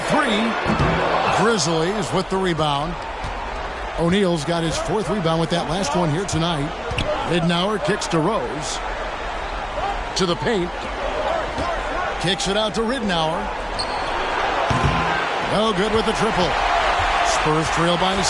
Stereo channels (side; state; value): both; identical; correlation 1.00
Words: 3. Grizzlies with the rebound. O'Neal's got his 4th rebound with that last one here tonight. Ridnour kicks to Rose. To the paint. Kicks it out to Ridnour. No good with the triple. Spurs trail by